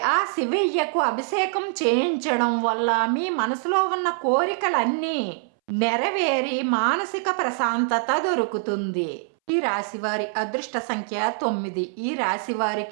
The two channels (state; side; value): silent; left; 63 dB below the other